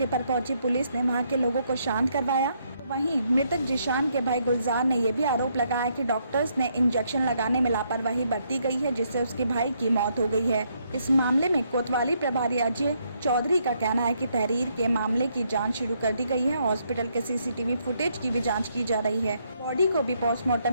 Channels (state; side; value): inverted; both; correlation -0.74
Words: पर पहुंची पुलिस ने वहां के लोगों को शांत करवाया। वहीं मृतक जिशान के भाई गुलजार ने यह भी आरोप लगाया कि डॉक्टर्स ने इंजेक्शन लगाने में लापरवाही बरती गई है, जिससे उसके भाई की मौत हो गई है। इस मामले में कोतवाली प्रभारी अजय चौधरी का कहना है कि तहरीर के मामले की जांच शुरू कर दी गई है। हॉस्पिटल के सीसीटीवी फुटेज की भी जांच की जा रही है। बॉडी को भी